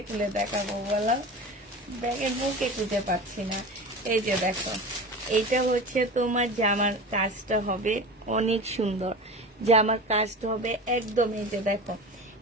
খুলে দেখাবো বলো, ব্যাগের মুখে খুঁজে পাচ্ছি না। এই যে দেখো এইটা হচ্ছে তোমার জামার কাজটা হবে, অনেক সুন্দর জামার কাজটা হবে একদম। এই যে দেখো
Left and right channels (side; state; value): both; normal; correlation 0.32